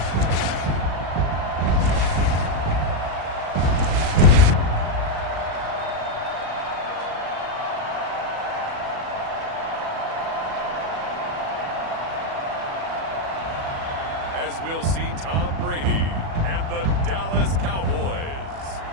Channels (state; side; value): late; left; 37 ms